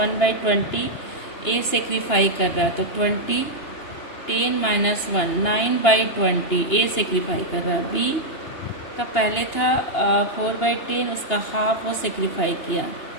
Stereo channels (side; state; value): right; late; 2.8 ms